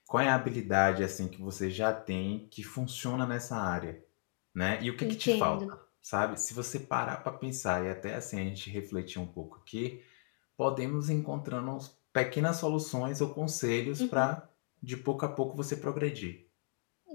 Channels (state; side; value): silent; right; 54 dB below the other